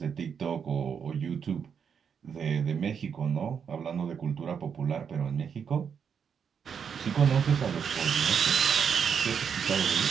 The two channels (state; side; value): quieter; left; 7.1 dB